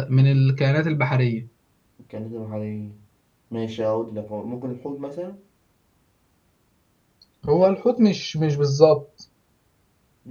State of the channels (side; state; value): both; identical; correlation 1.00